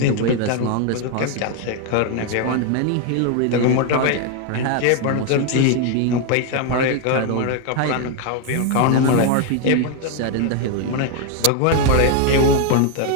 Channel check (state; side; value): different; both; correlation 0.01